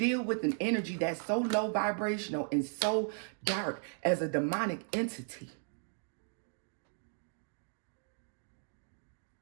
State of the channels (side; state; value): left; silent; 54 dB below the other